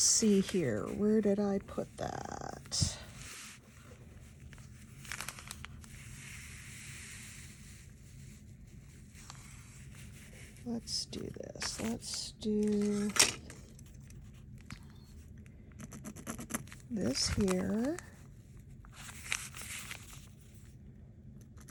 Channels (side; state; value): both; identical; correlation 1.00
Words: here. Where did I put that? Let's do this. Let's do this here.